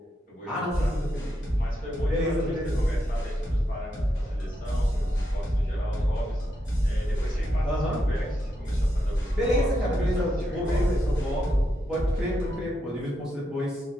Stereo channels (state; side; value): normal; both; correlation 0.83